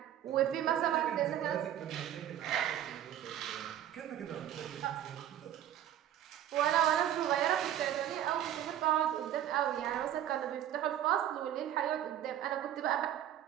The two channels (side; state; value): left; quieter; 11.2 dB